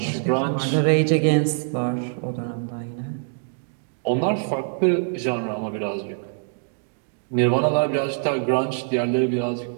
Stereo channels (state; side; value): silent; left; digital silence